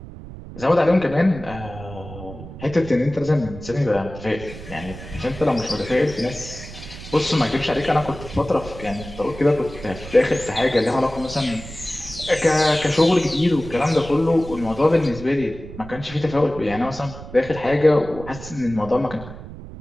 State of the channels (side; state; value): right; noise; rumble, 13 dB below the sound